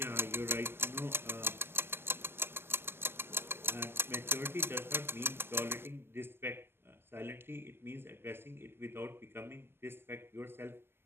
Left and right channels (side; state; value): left; late; 0.12 ms